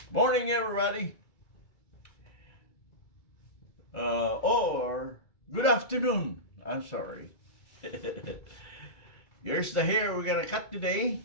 Morning, everybody. Or good afternoon. I'm sorry. Here's the hair we're gonna cut today.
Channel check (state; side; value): late; right; 2.3 ms